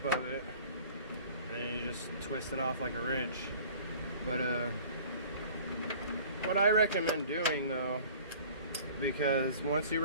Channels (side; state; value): both; inverted; correlation -0.47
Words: of it, and then you just twist it off like a wrench. But what I recommend doing though, because once you